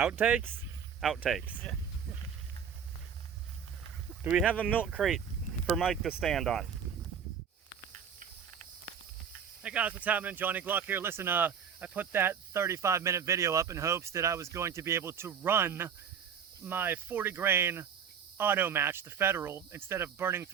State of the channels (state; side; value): quieter; left; 7.5 dB